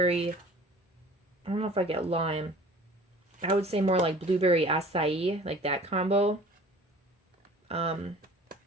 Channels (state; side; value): normal; both; correlation 0.46